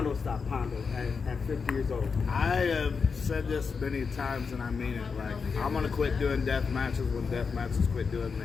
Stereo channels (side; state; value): right; quieter; 5.4 dB